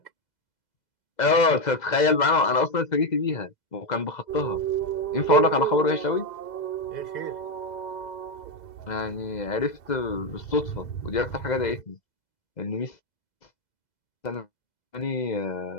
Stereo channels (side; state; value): right; late; 2.0 ms